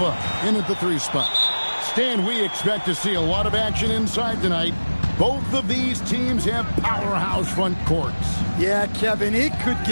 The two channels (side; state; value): both; inverted; correlation -1.00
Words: in at the 3 spot. Stan, we expect to see a lot of action inside tonight. Both of these teams have powerhouse front courts. Yeah, Kevin, it could